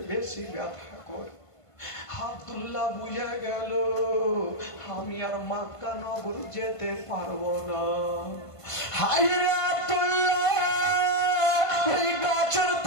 বেশি ব্যথা করে। আব্দুল্লাহ বুঝে গেল আমি আর মক্কা নগর যেতে পারবো না। হায়রে আব্দুল্লাহ ওই গাছের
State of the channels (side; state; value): right; late; 1.5 ms